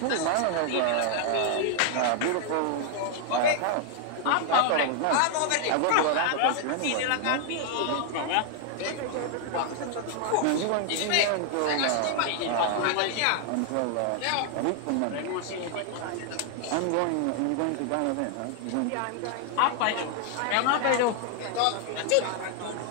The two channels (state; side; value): different; both; correlation 0.00